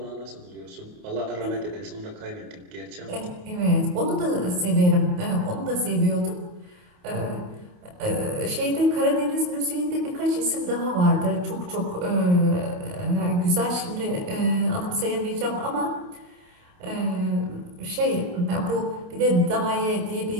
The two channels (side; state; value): left; late; 28 ms